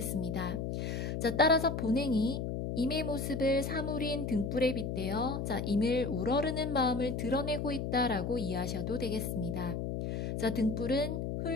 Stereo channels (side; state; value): left; noise; hum, 3 dB below the sound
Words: 자, 따라서 본행이 임의 모습을 사물인 등불에 빗대어 자, 임을 우러르는 마음을 드러내고 있다라고 이해하셔도 되겠습니다. 자, 등불은